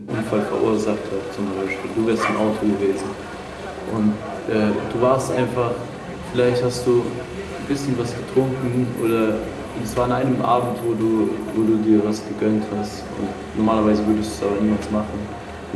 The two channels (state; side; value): identical; both; correlation 1.00